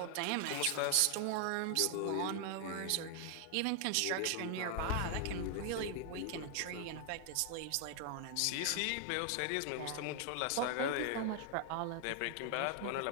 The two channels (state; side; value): different; both; correlation 0.00